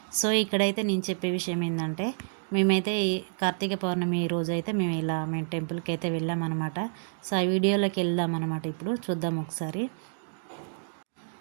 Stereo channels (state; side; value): silent; left; digital silence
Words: సో ఇక్కడైతే నేను చెప్పే విషయం ఏంటంటే, మేమైతే ఈ కార్తీక పౌర్ణమి రోజు అయితే మేము టెంపుల్కి అయితే వెళ్ళామన్నమాట. సో ఆ వీడియోలోకి వెళ్దాం అనమాట. ఇప్పుడు చూద్దాం ఒకసారి.